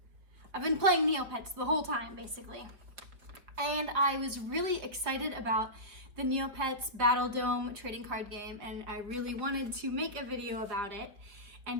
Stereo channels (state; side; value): late; left; 4.7 ms